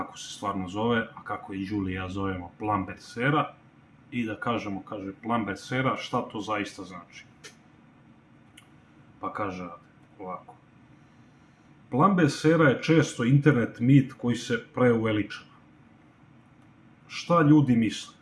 se stvarno zove, a kako i Julie i ja zovemo Plumbers era, i da kažemo, kaže Plumbers era, šta to zaista znači. Pa kaže ovako. Plumbers era je često internet mit koji se preuveličava. Šta ljudi misle?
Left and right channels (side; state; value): both; identical; correlation 1.00